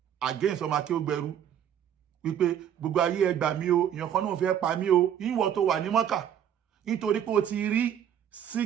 against ọmọ Akeugberu wípé gbogbo ayé ẹ gbà mí o èèyàn kan náà fẹ́ pa mí o ìwọ tó wà ní Mọ́kà nítorí pé o ti rí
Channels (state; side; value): quieter; left; 9.5 dB